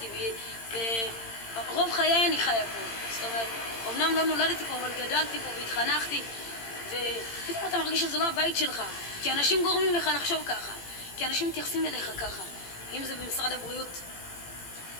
ורוב חיי אני חיה פה. זאת אומרת, אמנם לא נולדתי פה, אבל גדלתי פה והתחנכתי, ופתאום אתה מרגיש שזה לא הבית שלך, כי אנשים גורמים לך לחשוב ככה, כי אנשים מתייחסים אליך ככה. אם זה במשרד הבריאות,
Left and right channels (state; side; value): late; right; 18 ms